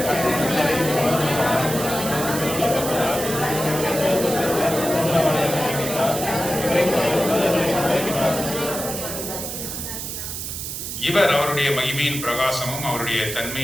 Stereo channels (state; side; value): noise; right; hiss, 6 dB below the sound